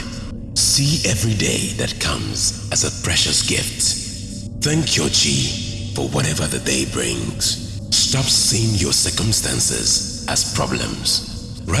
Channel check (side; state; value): both; identical; correlation 1.00